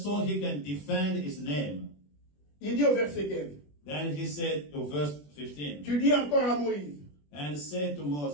so he can defend his name. Il dit au verset 15, Then he said to verse 15, tu dis encore à Moïse, and said to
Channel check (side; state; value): right; late; 21 ms